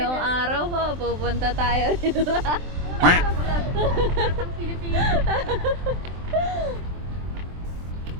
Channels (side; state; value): left; late; 23 ms